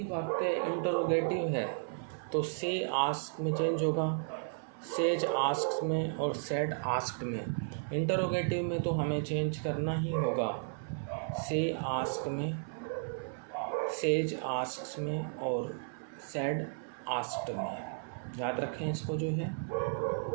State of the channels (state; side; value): silent; left; 55 dB below the other